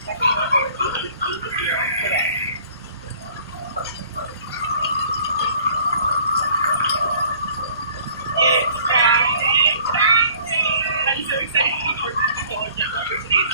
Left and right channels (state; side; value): inverted; both; correlation -0.53